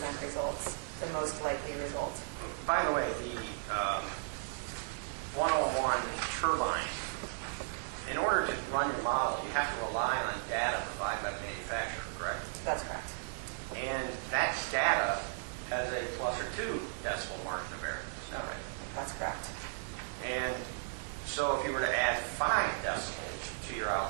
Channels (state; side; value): silent; left; digital silence